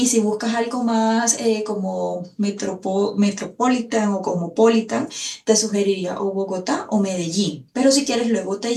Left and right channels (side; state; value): both; identical; correlation 1.00